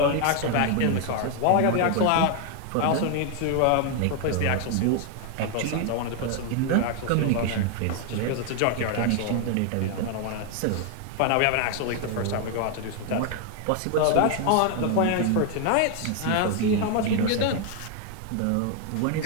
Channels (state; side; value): different; both; correlation 0.00